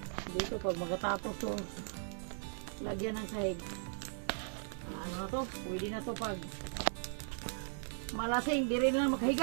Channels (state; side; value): silent; left; digital silence